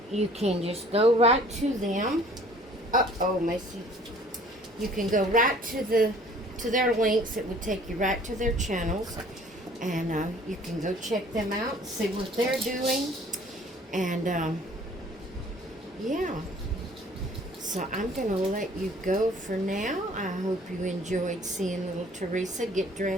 you can just go right to them. Uh-oh, Macy. You can go right to their links. It would take you right to their channels. And you can go check them out, see what they're doing. And, yeah. So I'm going to let you go for now. I hope you enjoyed seeing little Theresa get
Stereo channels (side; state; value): both; normal; correlation 0.53